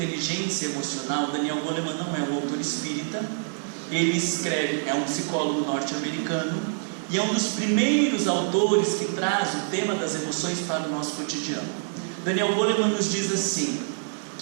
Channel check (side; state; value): left; silent; 61 dB below the other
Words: Emocional, Daniel Goleman não é um autor espírita, ele escreve, é um psicólogo norte-americano, e é um dos primeiros autores que traz o tema das emoções para o nosso cotidiano. Daniel Goleman nos diz assim,